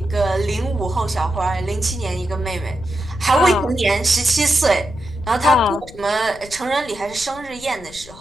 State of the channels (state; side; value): noise; left; rumble, 19 dB below the sound